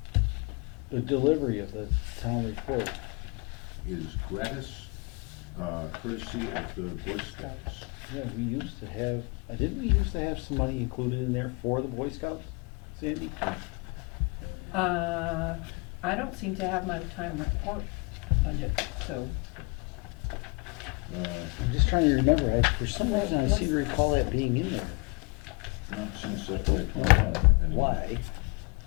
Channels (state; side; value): quieter; right; 29.4 dB